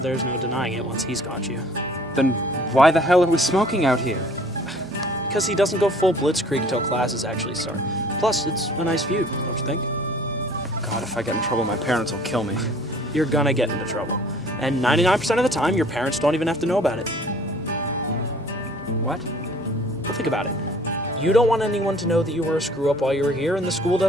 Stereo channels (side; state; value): both; normal; correlation 0.52